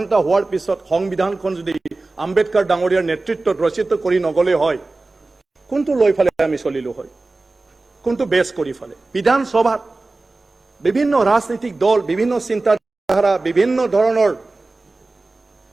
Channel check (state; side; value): quieter; left; 3.3 dB